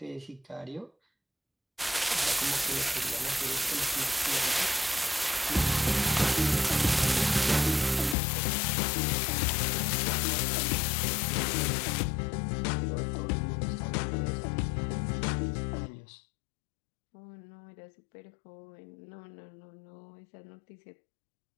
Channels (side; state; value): right; drops out; at 8.2 s